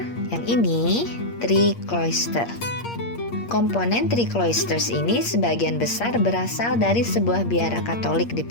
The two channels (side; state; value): right; late; 8.6 ms